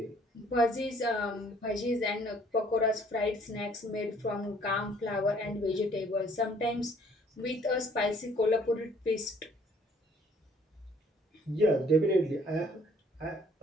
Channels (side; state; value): both; normal; correlation 0.60